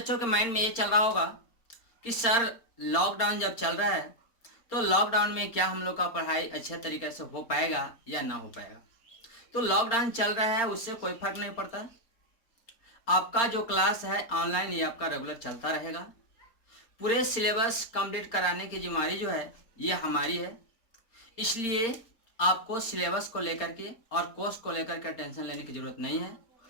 के माइंड में ये चल रहा होगा कि सर लॉकडाउन जब चल रहा है तो लॉकडाउन में क्या हम लोग का पढ़ाई अच्छे तरीके से हो पाएगा या ना हो पाएगा। तो लॉकडाउन चल रहा है उससे कोई फर्क नहीं पड़ता। आपका जो क्लास है ऑनलाइन ये आपका रेगुलर चलता रहेगा। पूरे सिलेबस कंप्लीट कराने की जिम्मेदारी जो है ये हमारी है। इसलिए आपको सिलेबस को लेकर के और कोर्स को लेकर के टेंशन लेने की ज़रूरत नहीं है।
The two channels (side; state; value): right; late; 4.3 ms